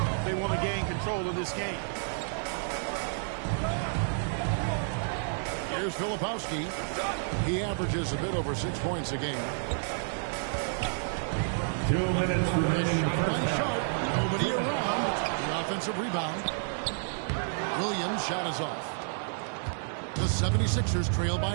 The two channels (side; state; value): left; silent; digital silence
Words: if they want to gain control of this game. Here's Filipowski. He averages a bit over 6 points a game. 2 minutes remaining in the first By half. Sharp. Nobody around. The offensive rebound. Williams' shot is off. The 76ers trail